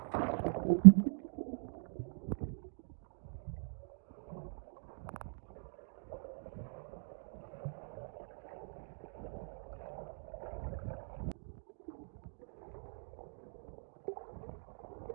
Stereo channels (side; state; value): left; silent; digital silence